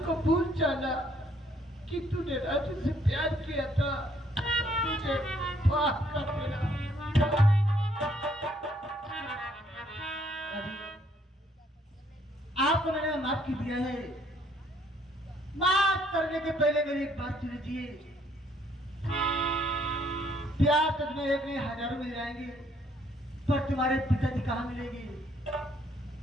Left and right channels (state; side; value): normal; both; correlation 0.66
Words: को भूल जाना कि तूने राजू से प्यार किया था, मुझे माफ कर देना। आपको मैंने माफ कर दिया है, माफ करने के पहले मेरी एक बात सुन लीजिए। प्यार तो तुम्हें एक नहीं हजारों मिल जाएंगे, पर तुम्हारे पिताजी कहाँ मिलेंगे?